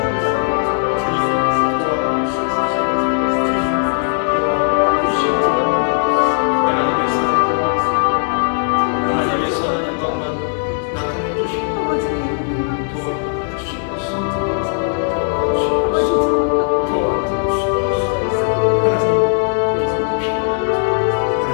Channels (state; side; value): silent; right; 68 dB below the other